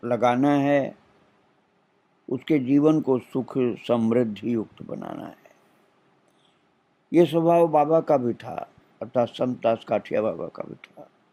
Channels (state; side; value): identical; both; correlation 1.00